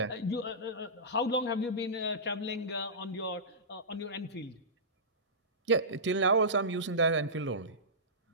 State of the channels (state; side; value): normal; both; correlation -0.19